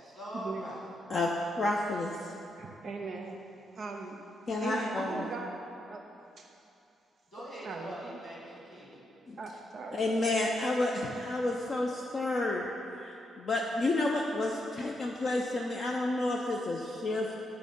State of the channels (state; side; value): normal; both; correlation 0.81